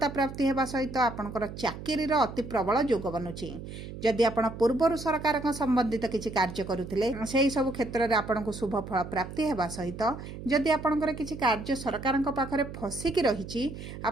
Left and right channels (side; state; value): right; noise; hum, 11 dB below the sound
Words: प्राप्ति हेबा सहित आपणकर चाकरी रो अति प्रबल जोग बनुछि। जदि आपण पूर्वरु सरकार संबंधित किछि कार्य करुथिले सेही सब क्षेत्र रे आपणको शुभ फल प्राप्ति हेबा सहित जदि आपणकर किछि कार्य सरकारक पाखरे फसिकी रहिछि,